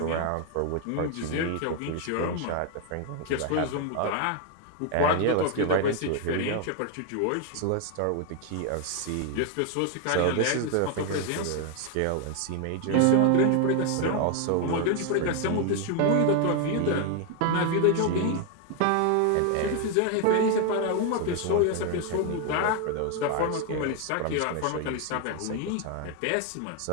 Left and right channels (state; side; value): different; both; correlation 0.01